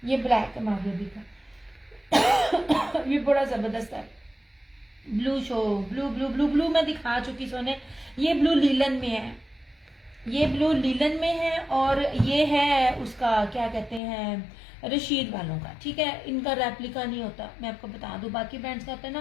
ये ब्लैक है मारिया बी का। ये बड़ा जबरदस्त है। Blue show, blue blue blue blue मैं दिखा चुकी सोने। ये ब्लू लीलन में है, ये ब्लू लीलन में है और ये है उसका क्या कहते हैं रशीद वालों का, ठीक है। इनका रेप्लिका नहीं होता, मैं आपको बता दूं, बाकी ब्रांड्स का होता है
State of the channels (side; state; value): right; drops out; at 14.0 s